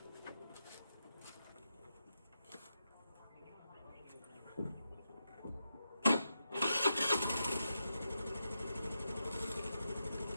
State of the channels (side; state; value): both; inverted; correlation -0.86